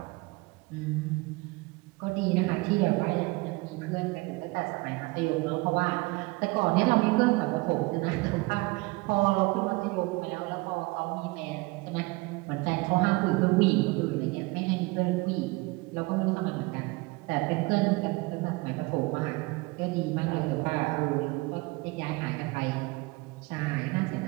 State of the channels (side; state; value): left; quieter; 24.7 dB